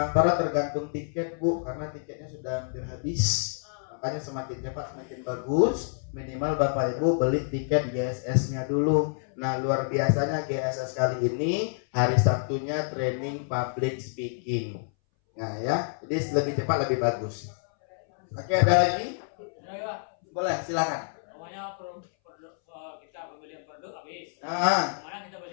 tergantung tiket Bu, karena tiketnya sudah hampir habis. Makanya semakin cepat semakin bagus. Minimal Bapak Ibu beli tiket GSS-nya dulu. Nah, luar biasanya GSS kali ini hari Sabtunya training public speaking. Nah ya, jadi lebih cepat lebih bagus. Oke, ada lagi? Boleh, silakan. Namanya kita pembelian produk habis. Mana kita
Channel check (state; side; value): silent; right; 59 dB below the other